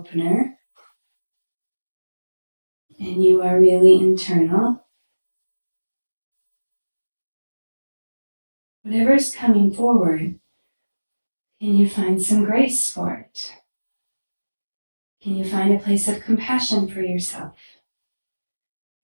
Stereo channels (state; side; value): inverted; both; correlation -1.00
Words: and you are really internal. Whatever is coming forward, can you find some grace for it? Can you find a place of compassion for yourself,